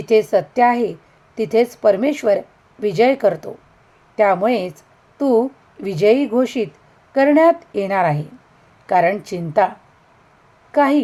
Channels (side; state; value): both; identical; correlation 1.00